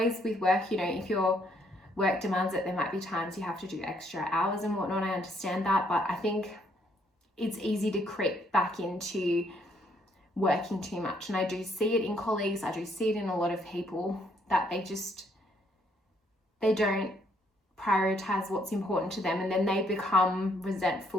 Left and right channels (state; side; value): normal; both; correlation 0.69